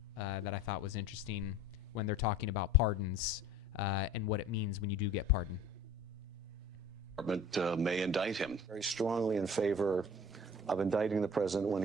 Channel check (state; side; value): normal; both; correlation 0.45